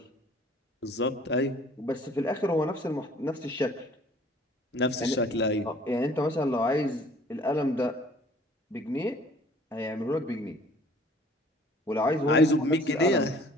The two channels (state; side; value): normal; both; correlation 0.54